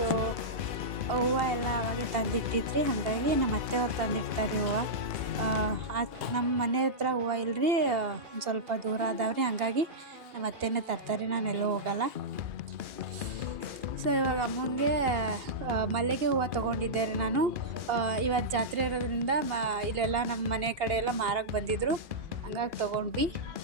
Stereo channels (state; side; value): late; left; 2.4 ms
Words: ಹೂವು ಎಲ್ಲ ಅವಾಗೆ ತಂದಿಟ್ಟಿದ್ರಿ, ಹಾಗಾಗಿ ನಮ್ಮ ಅತ್ತೆಯವ್ರು ತಂದಿಡ್ತಾರೆ ಹೂವು. ನಮ್ಮ ಮನೆ ಹತ್ರ ಹೂವು ಇಲ್ಲರಿ, ಒಂದು ಸ್ವಲ್ಪ ದೂರ ಅದಾವ್ರಿ, ಹಾಗಾಗಿ ನಮ್ಮ ಅತ್ತೆನೇ ತರ್ತಾರೆ, ನಾನೆಲ್ಲೂ ಹೋಗಲ್ಲ. ಸೊ ಇವಾಗ ಅಮ್ಮಂಗೆ ಮಲ್ಲಿಗೆ ಹೂವು ತೊಗೊಂಡಿದ್ದೆ ರೀ ನಾನು. ಇವತ್ತು ಜಾತ್ರೆ ಇರೋದ್ರಿಂದ ಇಲ್ಲೆಲ್ಲ ನಮ್ಮ ಮನೆ ಕಡೆ ಎಲ್ಲ ಮಾರಕ್ಕೆ ಬಂದಿದ್ದರು, ಹಂಗಾಗಿ ತೊಗೊಂಡ್ವಿ.